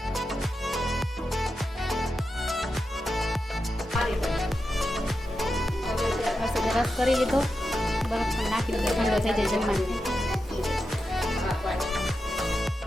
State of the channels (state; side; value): normal; both; correlation 0.89